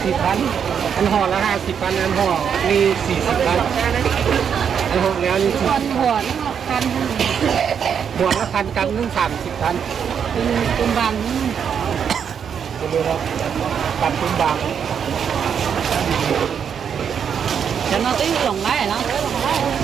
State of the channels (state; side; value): quieter; left; 7.6 dB